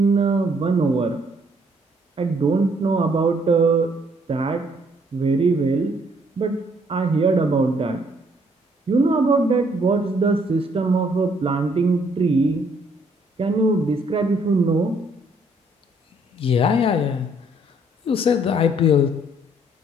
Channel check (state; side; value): normal; both; correlation 0.66